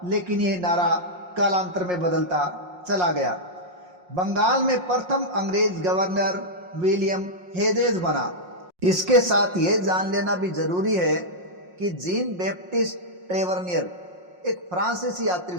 लेकिन यह नारा कालांतर में बदलता चला गया। बंगाल में प्रथम अंग्रेज गवर्नर विलियम हेजेज बना। इसके साथ ये जान लेना भी जरूरी है कि जीन बैप्टिस्ट ट्रेवर्नियर एक फ्रांसीसी यात्री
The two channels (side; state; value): left; late; 5.6 ms